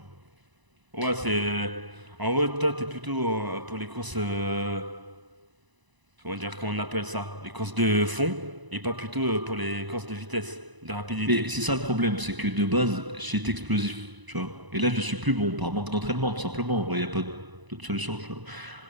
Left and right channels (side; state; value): left; late; 1.0 ms